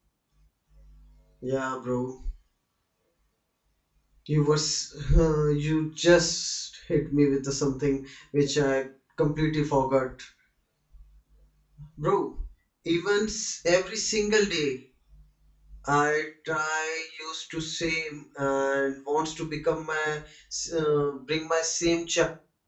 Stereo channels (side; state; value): both; identical; correlation 1.00